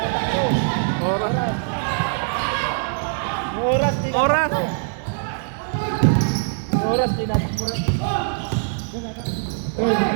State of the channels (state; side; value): silent; left; 63 dB below the other